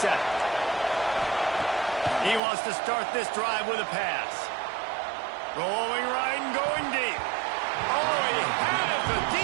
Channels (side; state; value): left; drops out; at 2.4 s